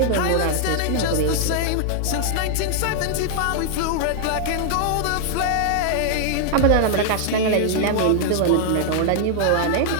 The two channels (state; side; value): different; both; correlation 0.00